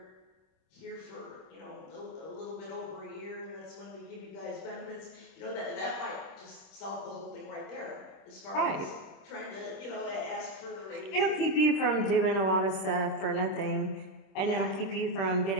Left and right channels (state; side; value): late; right; 26 ms